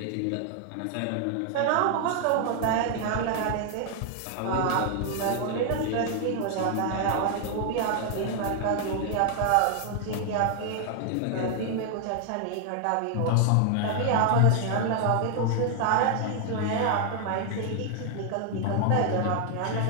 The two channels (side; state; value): both; different; correlation 0.00